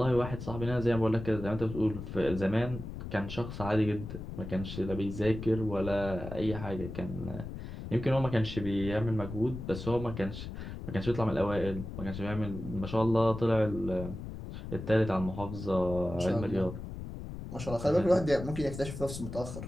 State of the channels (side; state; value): left; noise; rumble, 9 dB below the sound